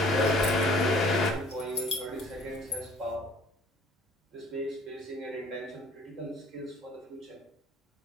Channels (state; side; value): normal; both; correlation 0.54